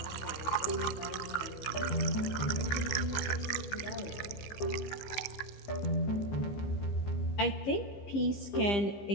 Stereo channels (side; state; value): right; late; 14 ms